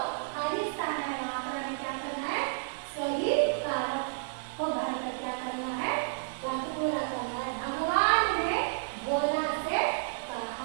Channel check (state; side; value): silent; left; digital silence